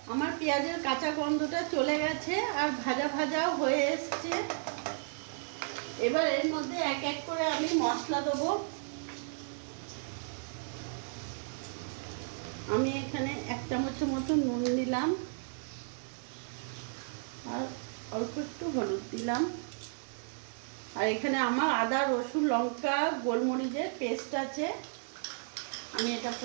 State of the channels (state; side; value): silent; left; 55 dB below the other